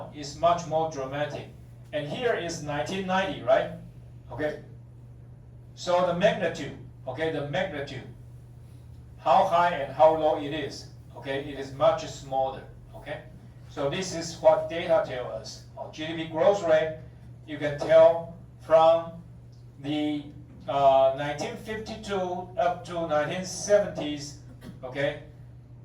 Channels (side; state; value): both; identical; correlation 1.00